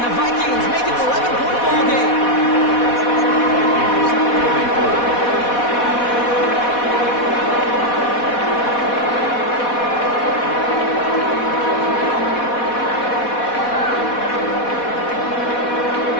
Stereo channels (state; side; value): late; right; 4.1 ms